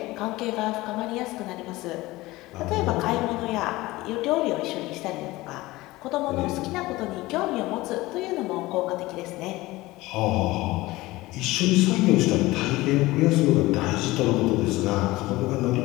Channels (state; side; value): quieter; right; 19.4 dB